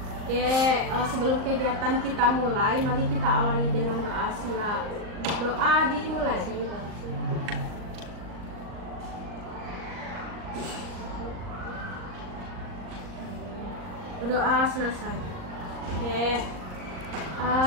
Oke, sebelum kegiatan kita mulai, mari kita awali dengan doa. Sila doa dimulai. Doa selesai. Oke.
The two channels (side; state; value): left; late; 38 ms